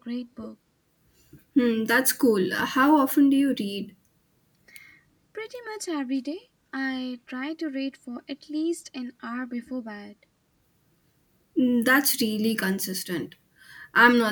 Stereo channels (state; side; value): identical; both; correlation 1.00